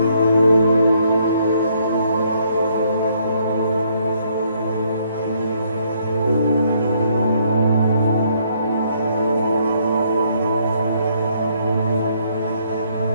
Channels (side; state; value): both; inverted; correlation -0.69